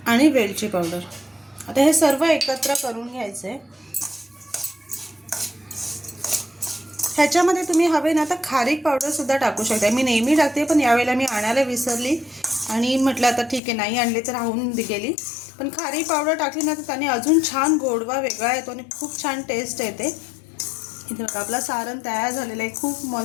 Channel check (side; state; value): right; drops out; at 13.6 s